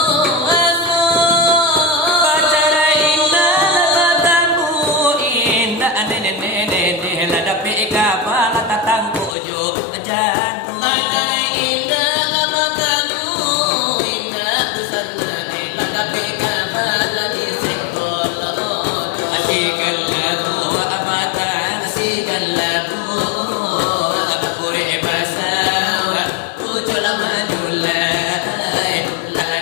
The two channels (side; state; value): right; drops out; at 9.3 s